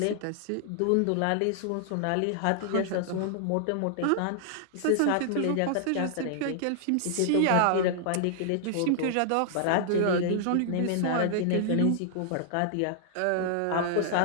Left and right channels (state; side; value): different; both; correlation -0.01